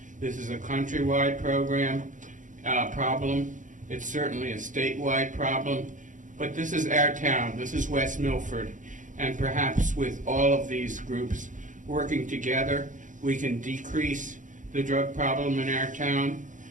This is a countrywide problem. It's certainly a statewide problem. But this is our town. This is West Milford. And perhaps with all of these groups working together, we can decrease the drug problem in our town.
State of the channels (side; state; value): left; late; 0.37 ms